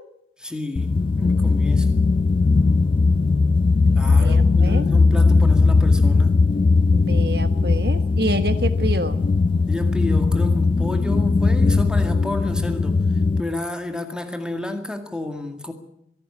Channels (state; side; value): quieter; right; 3.3 dB